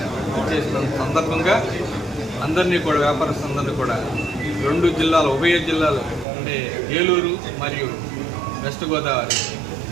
చేసిన సందర్భంగా అందరినీ కూడా వ్యాపారస్తులందరినీ కూడా 2 జిల్లాలు, ఉభయ జిల్లాలు అంటే ఏలూరు మరియు వెస్ట్ గోదావరి,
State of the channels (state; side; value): drops out; left; at 6.2 s